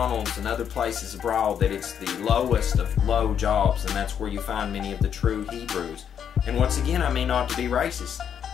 and other places abroad that it's the lowest of low jobs, and that's where you find many of the true Hebrews. And once again, I mean not to be racist.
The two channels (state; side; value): quieter; right; 8.4 dB